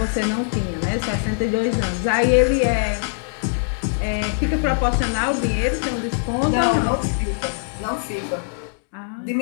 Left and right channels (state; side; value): silent; right; digital silence